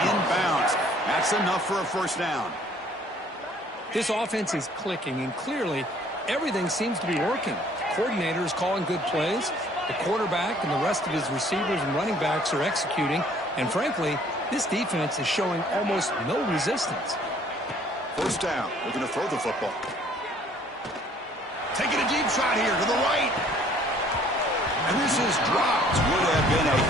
in bounds. That's enough for a first down. This offense is clicking, and clearly everything seems to be working. The coordinator is calling good plays. The quarterback and the rest of his receivers and running backs are executing. And frankly, this defense is showing almost no resistance. First down. Looking to throw the football. Taking a deep shot here to the right. And this is dropped. Would have been a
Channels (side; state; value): both; normal; correlation 0.58